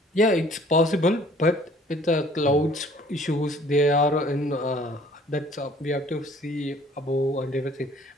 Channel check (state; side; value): normal; both; correlation 0.55